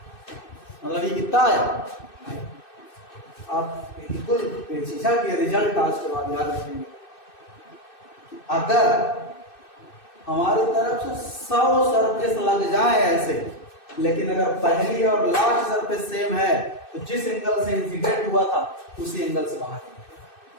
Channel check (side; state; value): right; late; 2.6 ms